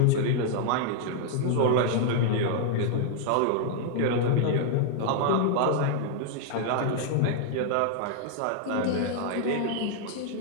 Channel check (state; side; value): different; both; correlation -0.01